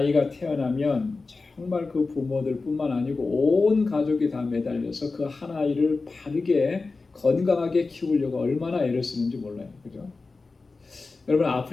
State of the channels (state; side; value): quieter; right; 3.9 dB